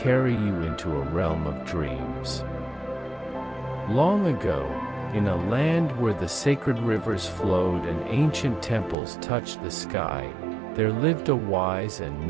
you into a realm of dreams. Long ago, in a land where the sacred rivers flowed and ancient temples touched the sky, there lived a wise and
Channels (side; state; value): left; drops out; at 9.0 s